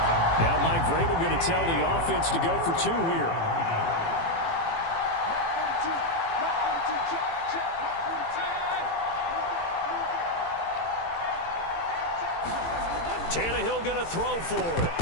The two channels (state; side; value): late; right; 18 ms